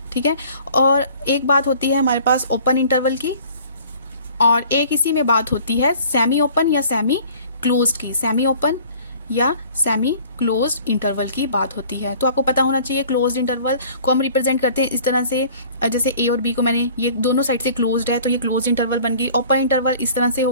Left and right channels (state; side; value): inverted; both; correlation -0.50